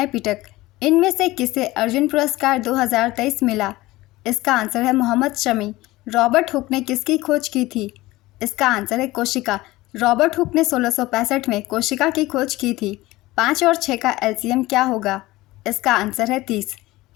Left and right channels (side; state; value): right; quieter; 18.8 dB